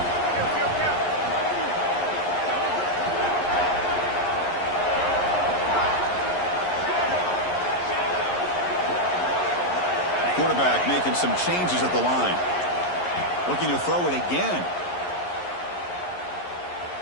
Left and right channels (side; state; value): right; late; 11 ms